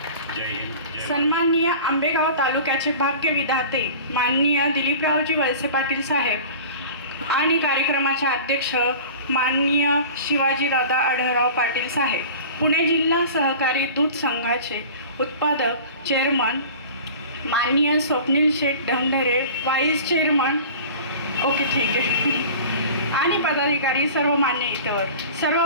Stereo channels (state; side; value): inverted; both; correlation -0.39